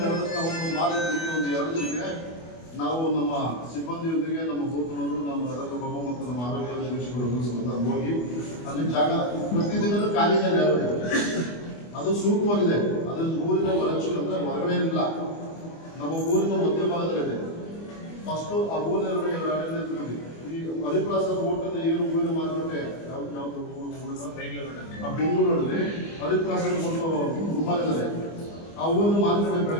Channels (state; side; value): late; right; 25 ms